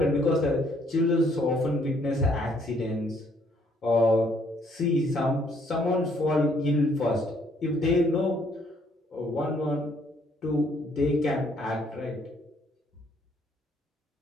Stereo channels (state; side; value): normal; both; correlation 0.66